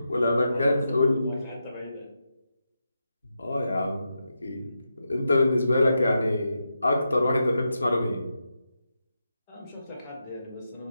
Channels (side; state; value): both; inverted; correlation -0.87